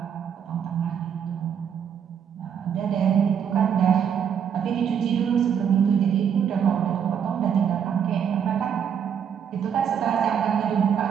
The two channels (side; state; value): left; quieter; 8.1 dB